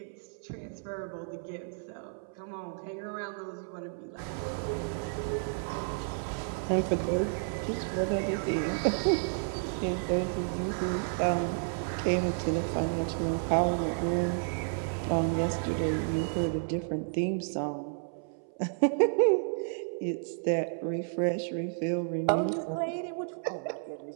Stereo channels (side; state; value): left; silent; 57 dB below the other